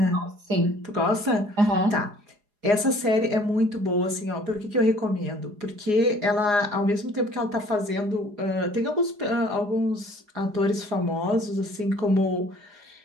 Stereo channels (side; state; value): left; late; 4.8 ms